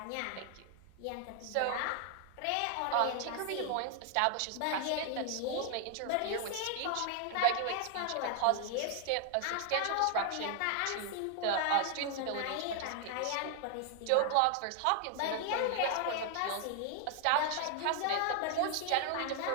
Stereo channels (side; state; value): both; different; correlation 0.00